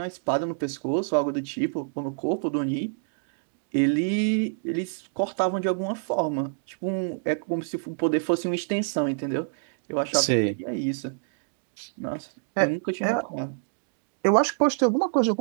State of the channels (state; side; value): silent; left; digital silence